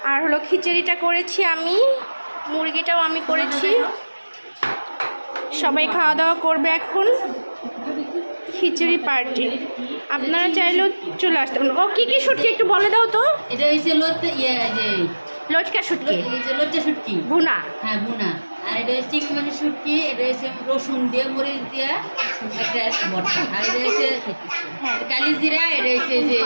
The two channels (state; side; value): inverted; both; correlation -1.00